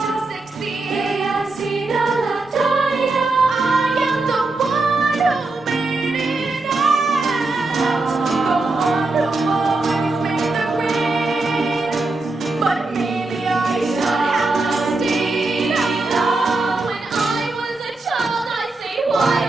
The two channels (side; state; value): left; quieter; 3.3 dB